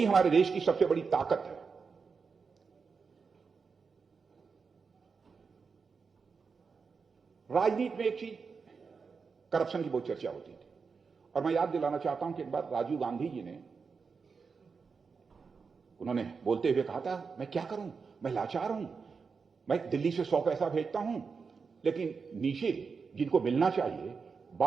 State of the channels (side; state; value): left; quieter; 5.2 dB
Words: हमारे देश की सबसे बड़ी ताकत है। राजनीति में एक चीज, करप्शन की बहुत चर्चा होती थी, और मैं याद दिलाना चाहता हूं कि एक बार राजीव गांधी जी ने, उन्होंने बोलते हुए कहा था, मैं क्या करूं, मैं लाचार हूं, मैं दिल्ली से 100 पैसा भेजता हूं, लेकिन नीचे जिनको मिलना चाहिए